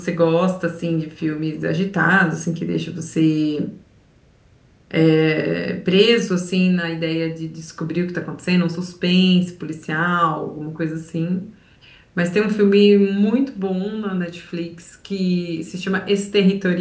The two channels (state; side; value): identical; both; correlation 1.00